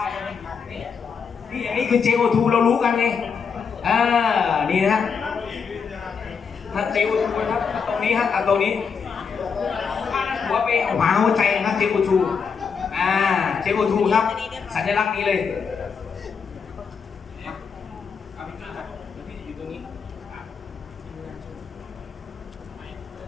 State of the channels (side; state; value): right; quieter; 6.1 dB